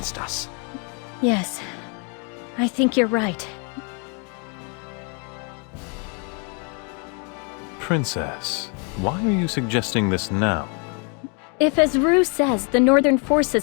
us. Yes, I think you're right. Princess, why are you suggesting this now? If, as Rue says, the Northern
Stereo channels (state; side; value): quieter; right; 35.5 dB